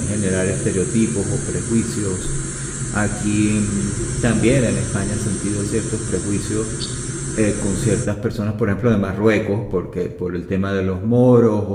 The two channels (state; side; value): identical; both; correlation 1.00